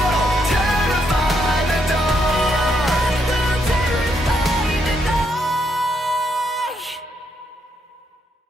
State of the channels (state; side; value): normal; both; correlation 0.77